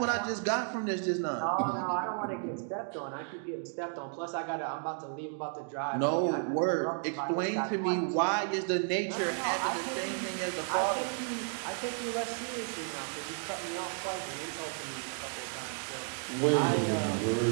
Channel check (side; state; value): left; silent; 56 dB below the other